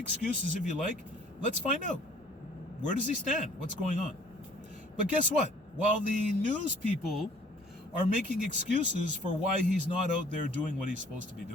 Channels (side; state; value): both; normal; correlation 0.55